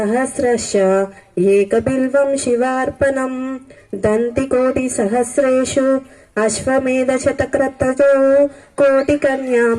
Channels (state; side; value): identical; both; correlation 1.00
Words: ఏకబిల్వం శివార్పణం దంతికోటి సహస్రేషు అశ్వమేధ శతక్రతజో కోటికన్యా